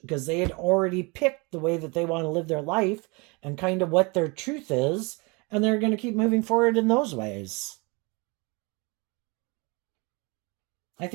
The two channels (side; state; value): left; quieter; 28.5 dB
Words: because they had already picked the way that they want to live their life and kind of what their truth is, and they're going to keep moving forward in those ways. I